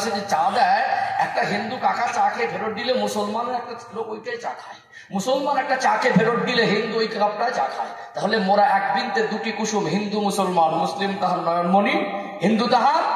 যে চা দেয়, একটা হিন্দু কাকা চা খেয়ে ফেরত দিলে মুসলমানের একটা লোক ওইটাই চা খায়। মুসলমান একটা চা খেয়ে ফেরত দিলে হিন্দু ওই কাপটায় চা খায়। তাহলে মোরা এক বৃন্তে 2টি কুসুম, হিন্দু মুসলমান, মুসলিম তাহার নয়নমণি, হিন্দু তাহার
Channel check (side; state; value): both; identical; correlation 1.00